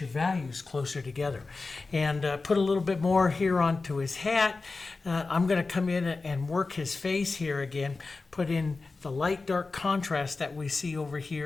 values closer together. And put a little bit more here onto his hat. I'm going to come in and work his face here again. Put in the light dark contrast that we see over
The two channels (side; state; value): right; quieter; 3.8 dB